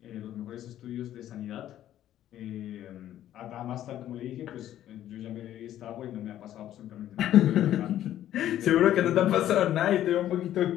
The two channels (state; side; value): quieter; right; 12.1 dB